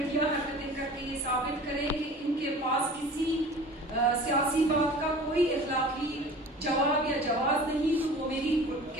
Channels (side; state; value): both; normal; correlation 0.42